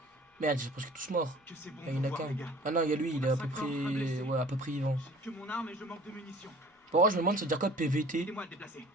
Merde, j'ai presque tous morts. que c'est bon Ah, il y en a de vous voir, qu'un. les gars. Ah non, il y a lui, il est à peu On a 5 morts, un près. blessé. Ouais, à peu près vivant. J'ai que mon arme et je manque de munitions. Bon, je me demande, ça veut dire quoi PVT? Aidez-moi à le déplacer.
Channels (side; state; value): both; normal; correlation 0.48